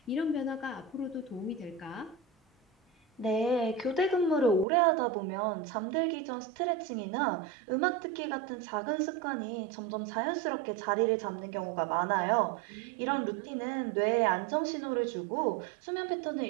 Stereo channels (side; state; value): left; drops out; at 4.7 s